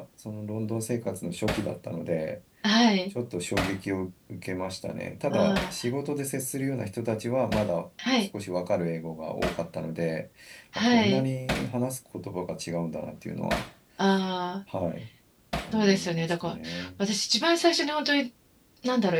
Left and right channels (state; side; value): identical; both; correlation 1.00